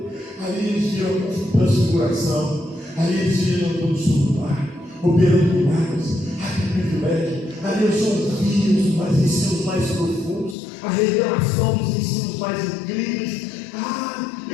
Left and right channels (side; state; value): right; drops out; at 10.6 s